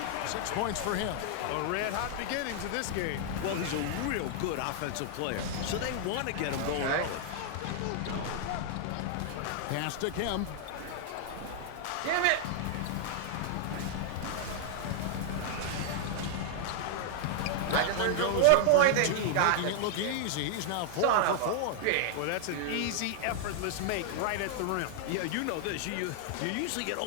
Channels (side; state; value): both; different; correlation -0.01